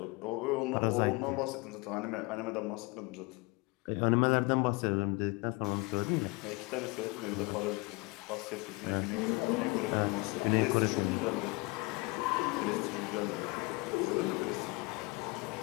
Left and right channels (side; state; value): right; quieter; 25.9 dB